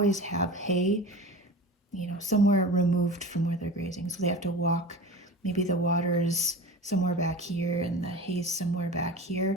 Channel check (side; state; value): both; normal; correlation 0.33